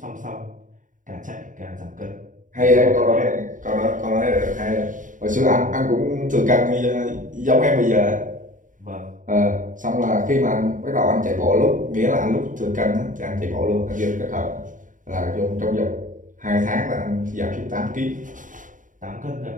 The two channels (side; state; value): left; late; 0.38 ms